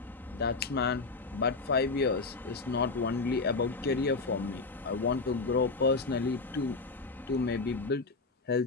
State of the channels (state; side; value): quieter; right; 3.9 dB